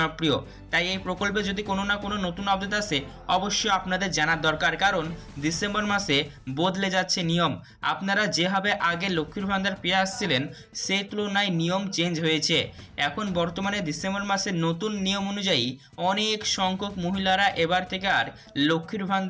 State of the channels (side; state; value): both; identical; correlation 1.00